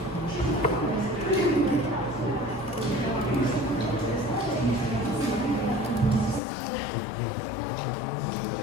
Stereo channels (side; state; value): right; drops out; at 6.4 s